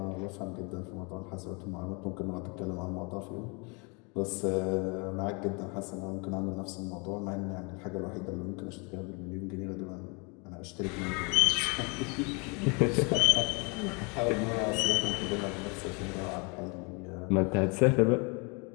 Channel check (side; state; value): right; quieter; 31.8 dB